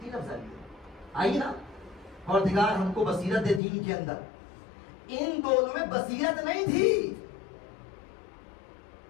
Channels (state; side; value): drops out; right; at 3.6 s